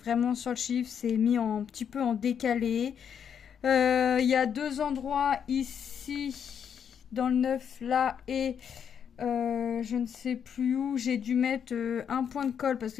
sur le chiffre, c'est mis un petit peu en décalé. Il y a deux endroits ici, dans le neuf là, et je ne sais plus où, j'ai dû mettre un point de colle parce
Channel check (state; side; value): quieter; right; 7.9 dB